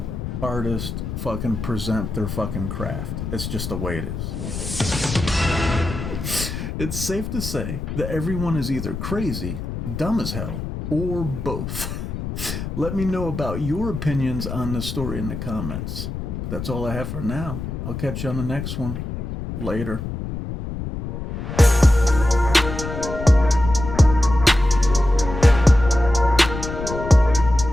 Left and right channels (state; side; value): noise; left; rumble, 6 dB below the sound